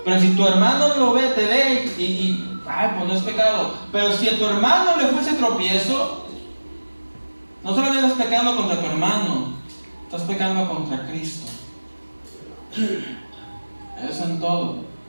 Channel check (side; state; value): both; inverted; correlation -1.00